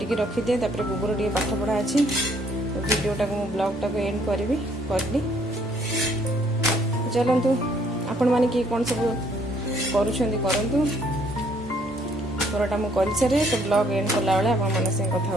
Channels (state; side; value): normal; both; correlation 0.65